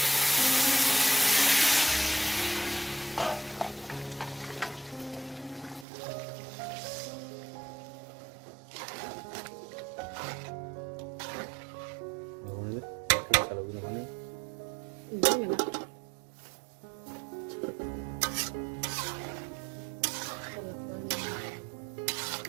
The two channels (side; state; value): left; drops out; at 5.9 s